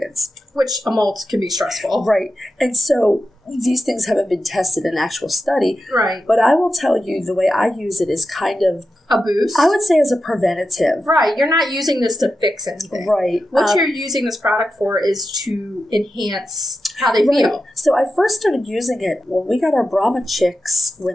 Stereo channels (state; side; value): normal; both; correlation 0.90